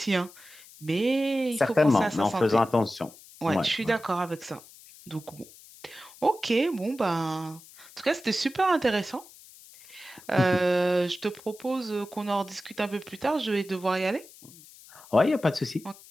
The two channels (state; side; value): noise; left; hiss, 21 dB below the sound